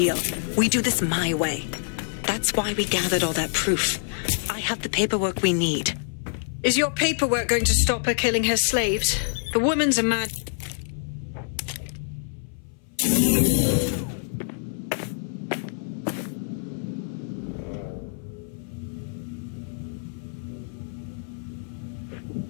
We do this my way. That's why we gathered all that proof. I have the paperwork we need. Is your paperwork going to stop her killing her slaves? The woman's a mad...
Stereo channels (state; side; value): silent; right; 58 dB below the other